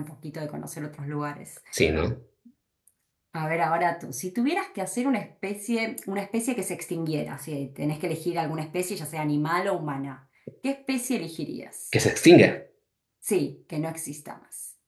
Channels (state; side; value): identical; both; correlation 1.00